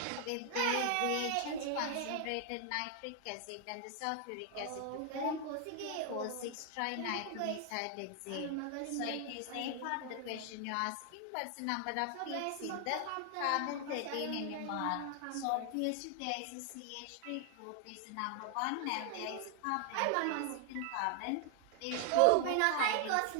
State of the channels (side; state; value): both; different; correlation 0.00